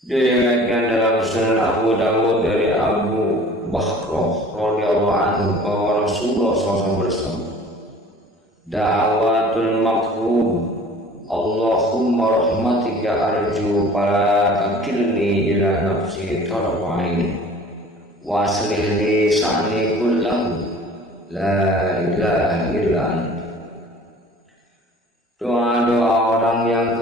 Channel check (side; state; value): both; normal; correlation 0.47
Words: Diriwayatkan dalam Sunan Abu Dawud dari Abu Bakhrah radhiyallahu anhu bahwa Rasulullah SAW bersabda, Da'awatul maqhub, Allahumma rahmatika arju fala takilni ila nafsi tarfain wa aslih li sa'ni kullahu la ilaha illa anta. Doa-doa orang yang